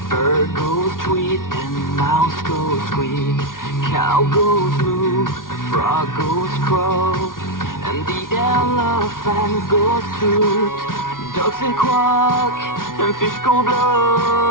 bird goes tweet, and mouse goes squeak. Cow goes moo, frog goes crow, and the elephant goes toot. Ducks say quack, and fish go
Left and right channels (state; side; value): late; right; 0.90 ms